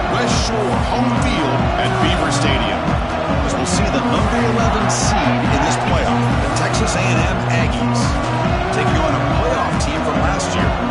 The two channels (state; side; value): identical; both; correlation 1.00